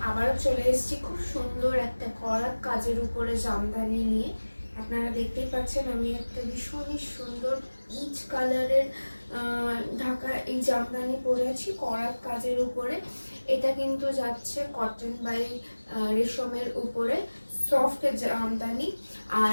আবারও চলে এসেছি খুব সুন্দর একটা করাত কাজের উপরে জামদানি নিয়ে। আপনারা দেখতেই পাচ্ছেন আমি একটা ভীষণই সুন্দর পিচ কালারের ঢাকা এই জামদানি পরে আছি করাত কাজের উপরে। এটা কিন্তু যাচ্ছে কটন বাই রেশমের উপরে, সফট জামদানি।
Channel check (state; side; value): inverted; both; correlation -1.00